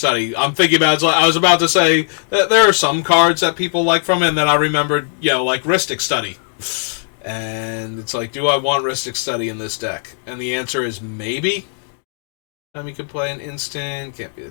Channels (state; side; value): silent; right; digital silence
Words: I'm thinking about it. I was about to say that there are some cards that people like from it, and then I remembered, like Rhystic Study. And it's like, do I want Rhystic Study in this deck? And the answer is maybe. You can play an instant, can't be the